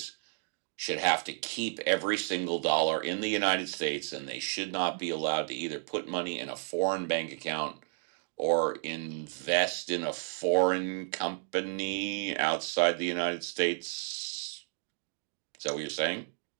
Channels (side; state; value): left; silent; 56 dB below the other